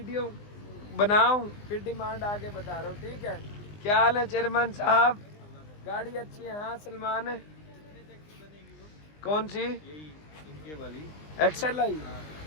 बनाऊं फिर डिमांड आगे बता रहा हूँ, ठीक है? क्या हाल है चेयरमैन साहब? गाड़ी अच्छी है? हाँ सलमान है। कौन सी? इनके वाली XLI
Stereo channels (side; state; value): right; late; 20 ms